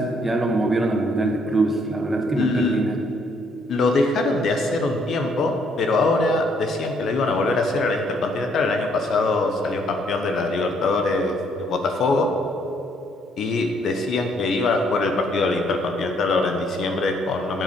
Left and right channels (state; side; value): normal; both; correlation 0.68